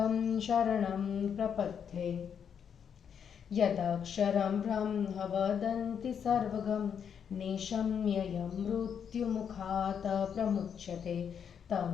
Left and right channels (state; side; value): quieter; right; 7.7 dB